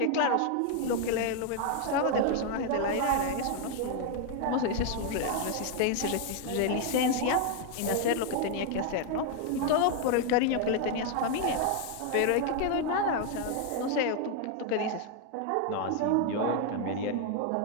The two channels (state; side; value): different; both; correlation 0.00